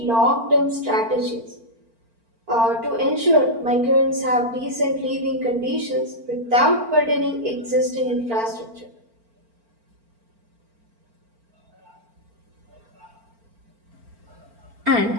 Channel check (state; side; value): late; left; 4.4 ms